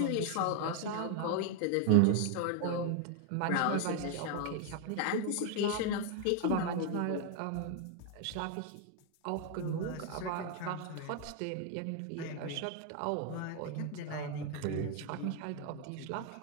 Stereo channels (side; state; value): both; different; correlation 0.00